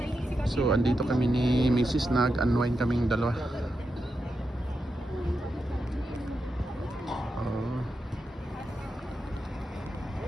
So andito kami ni Mrs. Nag-unwind kaming dalawa.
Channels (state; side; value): normal; both; correlation 0.87